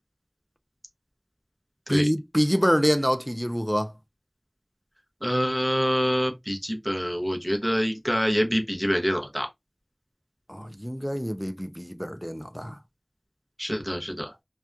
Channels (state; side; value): identical; both; correlation 1.00